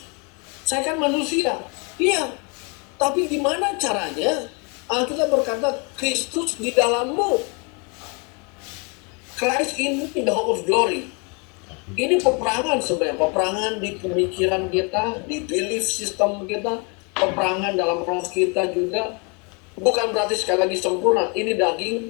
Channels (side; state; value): right; quieter; 33.1 dB